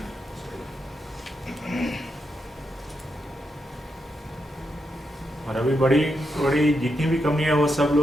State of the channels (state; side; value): normal; both; correlation 0.83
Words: और अभी बड़ी बड़ी जितनी भी कंपनी है वो सब